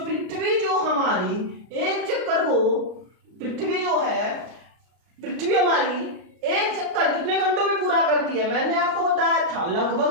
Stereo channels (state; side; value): late; left; 33 ms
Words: जो हमारी एक चक्कर को, पृथ्वी जो है, पृथ्वी हमारी एक चक्कर कितने घंटों में पूरा करती है? मैंने आपको बताया था